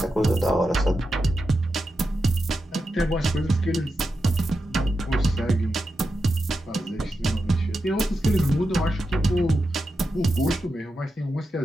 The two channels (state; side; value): normal; both; correlation 0.89